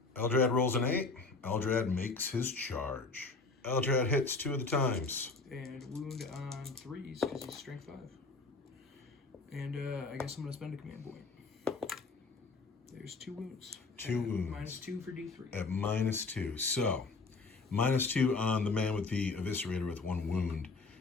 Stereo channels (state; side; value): quieter; right; 3.9 dB